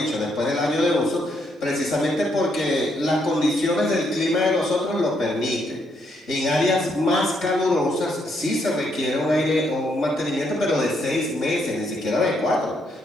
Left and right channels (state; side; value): normal; both; correlation 0.75